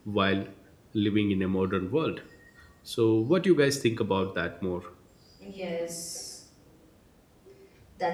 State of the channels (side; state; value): both; identical; correlation 1.00